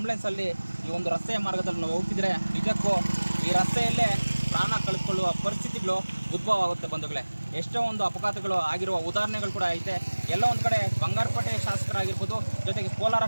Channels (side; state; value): both; inverted; correlation -1.00